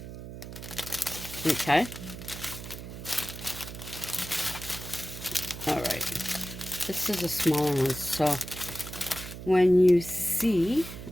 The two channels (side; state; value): right; noise; hum, 11 dB below the sound